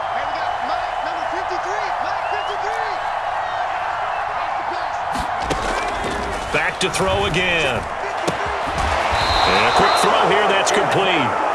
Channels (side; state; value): both; identical; correlation 1.00